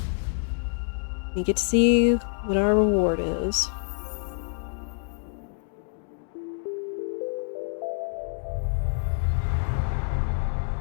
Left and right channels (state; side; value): silent; right; digital silence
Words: we get to see what our reward is.